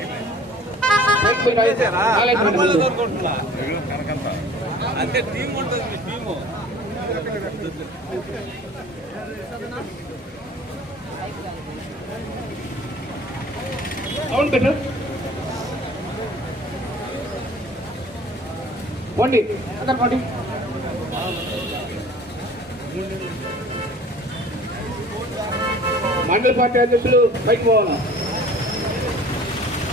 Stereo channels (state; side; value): normal; both; correlation 0.47